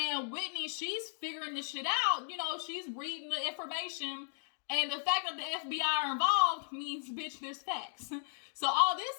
Whitney, she's figuring this shit out. She's reading the information. And the fact that the FBI are involved means, bitch, there's facts. So all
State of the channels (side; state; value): right; silent; digital silence